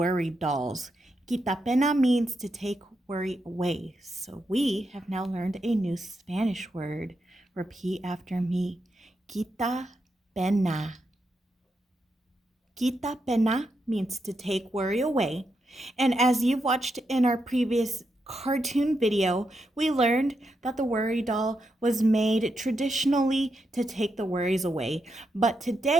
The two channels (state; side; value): normal; both; correlation 0.84